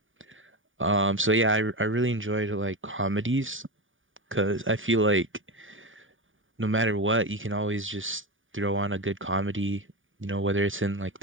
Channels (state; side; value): late; left; 0.57 ms